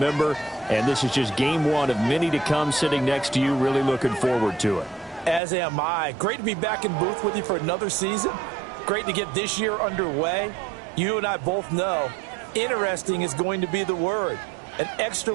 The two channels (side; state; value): left; drops out; at 5.4 s